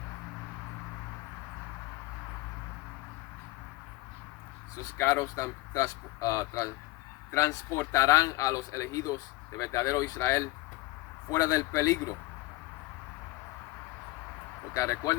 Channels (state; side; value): quieter; right; 19.8 dB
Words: Esos carros transportarán a los elegidos de verdadero Israel fuera del peligro. Porque